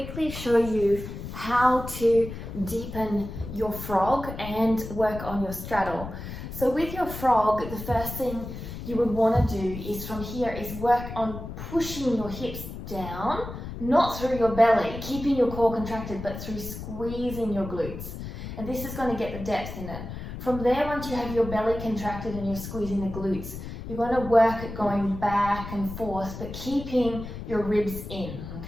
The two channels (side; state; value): left; noise; rumble, 9 dB below the sound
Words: show you how to deepen your frog and work on your straddle. So with your frog, the first thing you would want to do is from here is work on pushing your hips down, not through your belly, keeping your core contracted, but through squeezing your glutes. And this is going to get the depth in it. From there, once you have your belly contracted and you're squeezing the glutes, you're going to work at going back and forth, but keeping your ribs in,